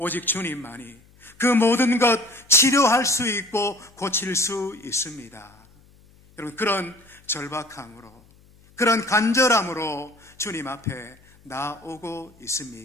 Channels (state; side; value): noise; left; hum, 28 dB below the sound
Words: 주님만이 그 모든 것 치료할 수 있고 고칠 수 있습니다. 여러분, 그런 절박함으로, 그런 간절함으로 주님 앞에 나오고